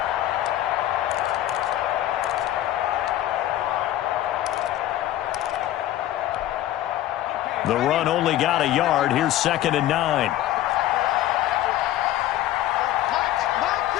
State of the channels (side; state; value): right; quieter; 13.6 dB